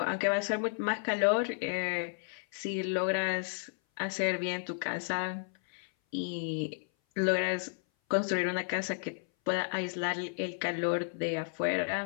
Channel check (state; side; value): silent; right; 56 dB below the other